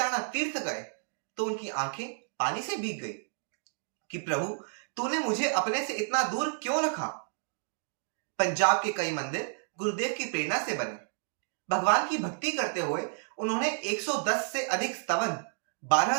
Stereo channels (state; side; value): silent; left; digital silence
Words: तीर्थ गए तो उनकी आंखें पानी से भीग गई। कि प्रभु तूने मुझे अपने से इतना दूर क्यों रखा। पंजाब के कई मंदिर गुरुदेव की प्रेरणा से बने। भगवान की भक्ति करते हुए उन्होंने 110 से अधिक स्तवन, 12